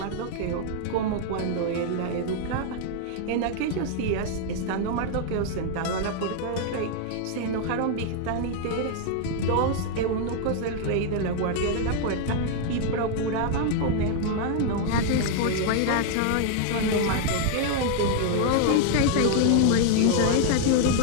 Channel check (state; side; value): different; both; correlation 0.00